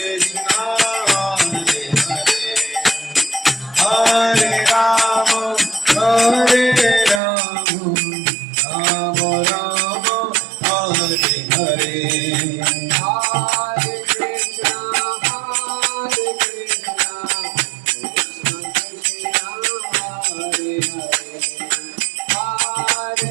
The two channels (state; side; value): drops out; left; at 7.2 s